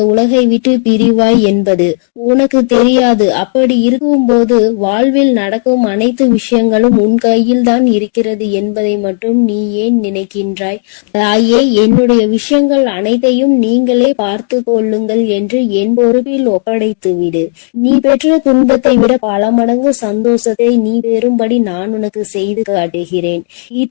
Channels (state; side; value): silent; right; digital silence